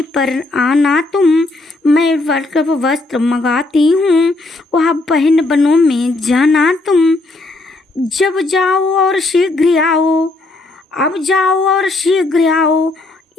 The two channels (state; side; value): quieter; right; 3.0 dB